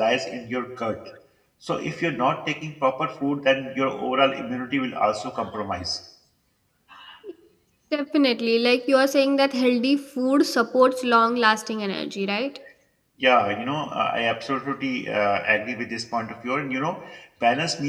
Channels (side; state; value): both; identical; correlation 1.00